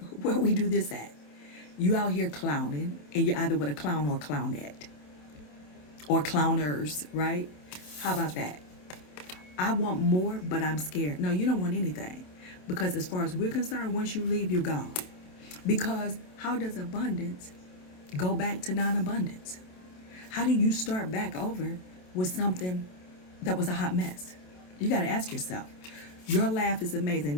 we do this at? You out here clowning, and you're either with a clown or a clownette. Or clowners, right? How about that? I want more, but I'm scared. No, you don't want anything. Because as far as we're concerned, once you leave, you're gone. Because how does abundance go back to non-abundance? How do you start back over with something that was a hot mess? You got to ask yourself. Your laugh is amazing.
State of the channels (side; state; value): right; late; 27 ms